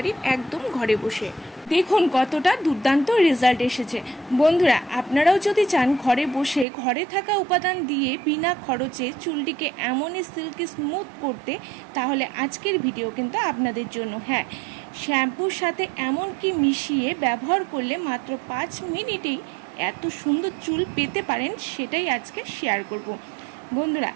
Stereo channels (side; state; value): left; drops out; at 6.7 s